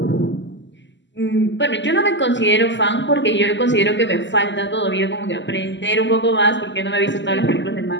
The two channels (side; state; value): right; late; 0.53 ms